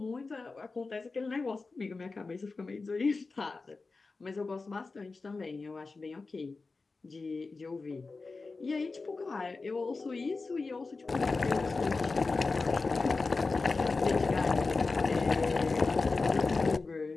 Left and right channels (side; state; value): right; quieter; 3.9 dB